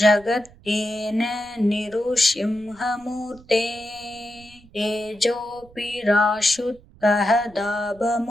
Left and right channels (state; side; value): noise; right; rumble, 25 dB below the sound